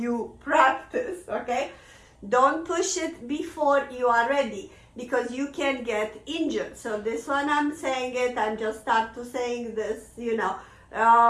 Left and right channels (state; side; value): identical; both; correlation 1.00